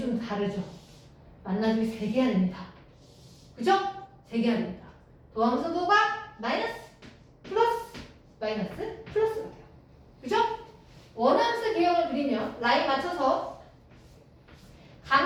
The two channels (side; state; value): both; identical; correlation 1.00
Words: 다르죠. 만나주기 3개야 됩니다. 그죠? 3개야 됩니다. 도함수도가 마이너스, 플러스, 마이너스, 플러스가 돼요. 그죠? 원함수 개형을 그리면 라인 맞춰서